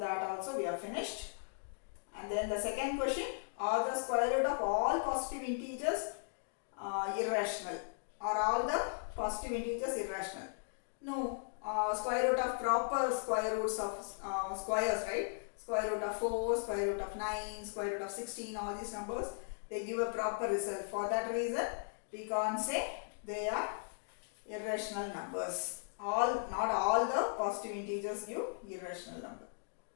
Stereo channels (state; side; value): silent; right; digital silence